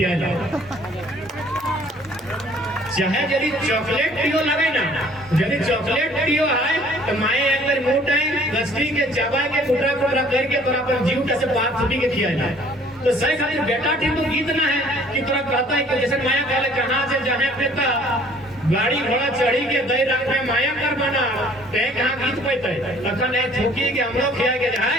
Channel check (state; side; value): normal; both; correlation 0.56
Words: चाहे यदि चॉकलेट पियो लगे ना यदि चॉकलेट पियो है तो माए अंदर मुंह टाइम गस्ती के चबा के टुकड़ा टुकड़ा करके तोरा अपन जीव से बात छुटी के खियाला तो सही खातिर बेटा ठीक तो गीत ना है कि तोरा कहता है कि जैसे माया कहले कहां से जाने पेता गाड़ी घोड़ा चढ़ी के दई रख में माया कर बना ते कहां गीत पैते तखन है छुकी के हमरो खिया के